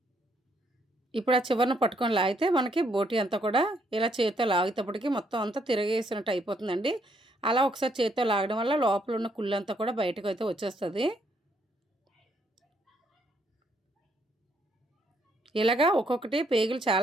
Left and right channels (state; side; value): normal; both; correlation 0.72